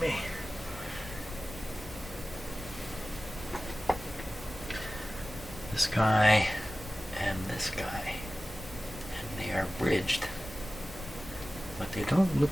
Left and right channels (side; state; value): both; normal; correlation 0.96